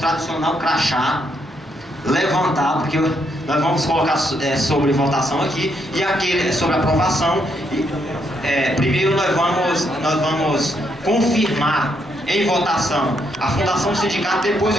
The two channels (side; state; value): both; normal; correlation 0.76